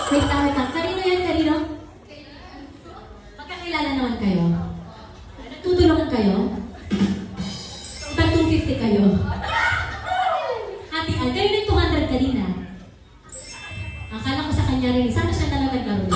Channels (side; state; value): both; identical; correlation 1.00